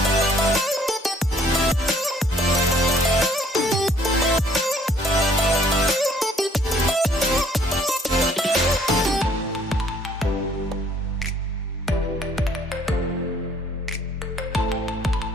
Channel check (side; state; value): both; normal; correlation 0.60